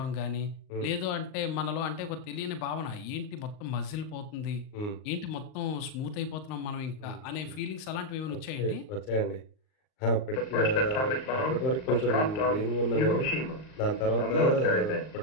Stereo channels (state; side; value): late; right; 38 ms